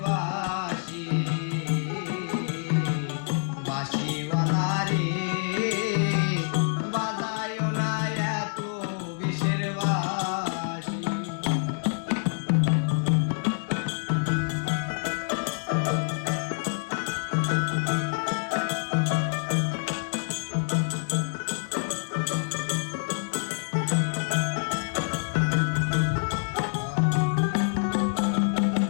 বাঁশি, বাঁশিওয়ালা রে বাজায় না এত বিষের বাঁশি।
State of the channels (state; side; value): silent; right; digital silence